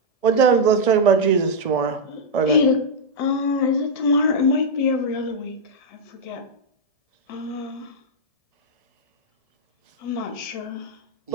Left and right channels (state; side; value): late; right; 1.7 ms